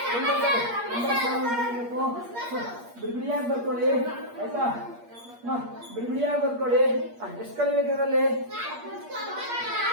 ಬಿಡಿಬಿಡಿಯಾಗಿ ಬರ್ಕೊಳ್ಳಿ ಆಯ್ತಾ? ಬಿಡಿಬಿಡಿಯಾಗಿ ಬರ್ಕೊಳ್ಳಿ. ಎಷ್ಟು ಕಲಿಬೇಕು ಇದರಲ್ಲಿ?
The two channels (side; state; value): left; late; 8.5 ms